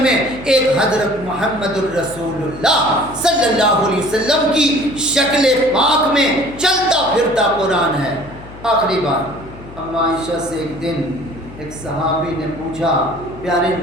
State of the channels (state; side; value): noise; left; hum, 17 dB below the sound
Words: میں، ایک حضرت محمد الرسول اللہ صلی اللہ علیہ وسلم کی شکل پاک میں چلتا پھرتا قرآن ہے۔ آخری بات، اما عائشہ سے ایک دن ایک صحابی نے پوچھا پیارے